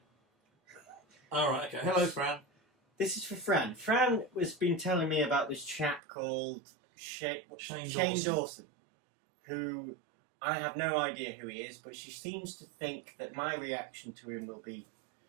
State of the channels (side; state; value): left; drops out; at 6.0 s